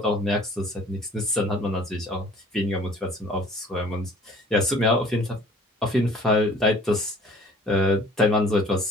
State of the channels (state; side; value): normal; both; correlation 0.51